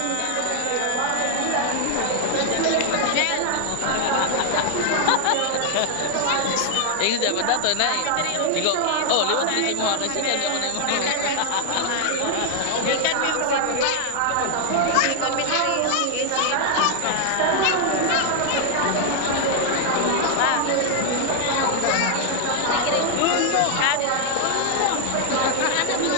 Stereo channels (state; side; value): different; both; correlation 0.00